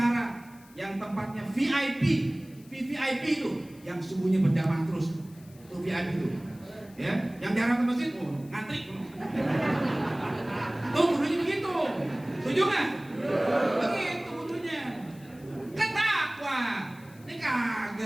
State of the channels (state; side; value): noise; left; hiss, 26 dB below the sound